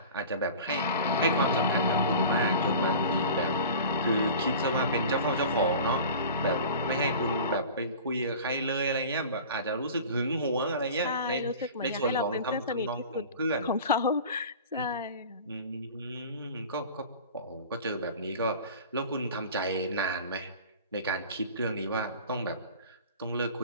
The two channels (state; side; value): inverted; both; correlation -0.39